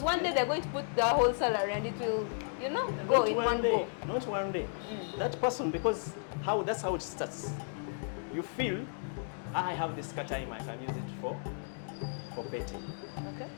one day they're going to put the whole salary and it will, go in one go. Not one day. That person, because that's how it starts. You feel, I have this time, I can use it for betting. Okay.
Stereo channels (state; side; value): silent; right; digital silence